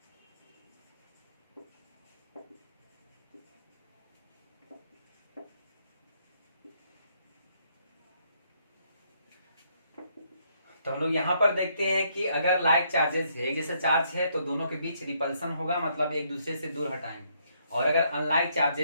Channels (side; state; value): both; inverted; correlation -0.72